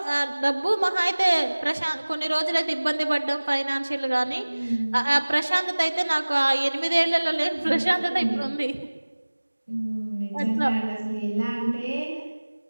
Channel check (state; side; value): inverted; both; correlation -1.00